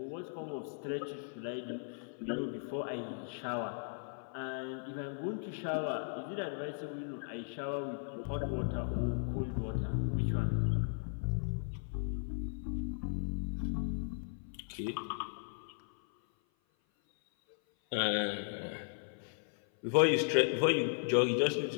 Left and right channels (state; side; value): silent; right; 53 dB below the other